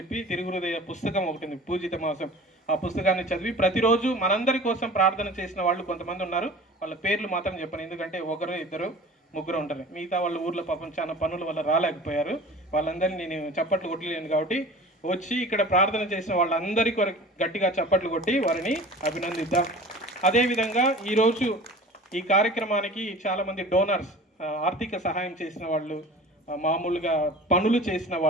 తిరుగుహృదయ పుస్తకం ఒకటి ఉంది, పూజిత మాసం, ఆ పుస్తకాన్ని చదివి ప్రతిరోజు మనందరి కోసం ప్రార్థన చేసిన వాళ్ళు కొంతమంది ఉన్నారు. వాళ్ళ పేర్లు మాత్రం చెప్పను, ఎందుకంటే ఒకరు ఇద్దరు ముగ్గురు ఉంటారు. మిగతా వాళ్ళ ఊర్లో పాపం చాలా పనుల వల్ల రాలేకపోయారు. వాళ్ళందరినీ నేను చప్పట్లు కొట్టలేను కాబట్టి వచ్చి ఇక్కడ ప్రార్థన చేసిన వాళ్ళందరికీ గట్టిగా చప్పట్లు కొట్టి వారిని అభినందిద్దాం. అదేవిధంగా ఈరోజు ఈ కార్యక్రమానికి చాలామంది డోనర్స్, ఆర్థిక సహాయం చేసిన వాళ్ళు, మామూలుగా పనులు చేసిన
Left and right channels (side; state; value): both; normal; correlation 0.41